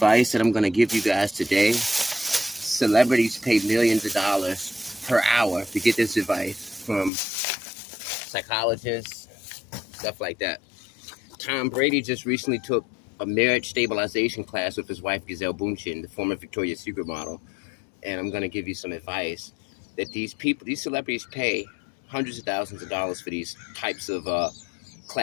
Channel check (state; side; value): drops out; right; at 7.1 s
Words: that I'm going to give you guys today, celebrities pay millions of dollars per hour to get this advice from psychologists, stuff like that. Tom Brady just recently took a marriage stabilization class with his wife, Gisele Bündchen, the former Victoria's Secret model. And I'm going to give you some advice that these celebrities pay hundreds of thousands of dollars for these types of